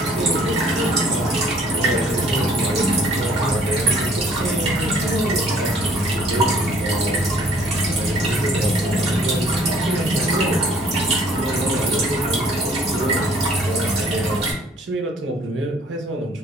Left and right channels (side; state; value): both; normal; correlation 0.58